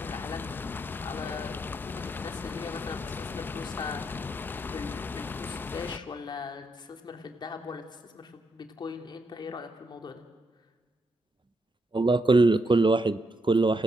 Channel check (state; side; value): normal; both; correlation 0.79